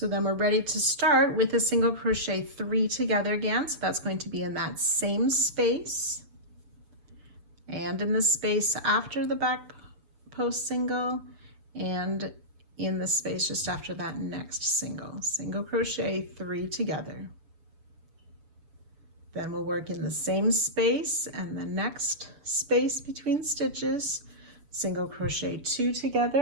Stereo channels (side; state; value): left; late; 7.0 ms